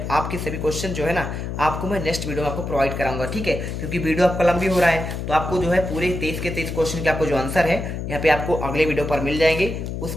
आपके सभी क्वेश्चन जो है ना आपको मैं नेक्स्ट वीडियो में आपको प्रोवाइड कराऊंगा, ठीक है, क्योंकि वीडियो आपका लंबी हो रहा है। तो आपको जो है पूरे 23 के 23 क्वेश्चन के आपको जो आंसर है यहाँ पे आपको अगले वीडियो पर मिल जाएंगे।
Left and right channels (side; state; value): left; noise; hum, 5 dB below the sound